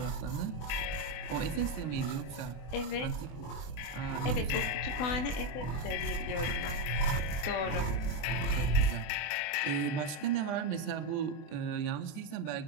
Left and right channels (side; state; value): right; late; 24 ms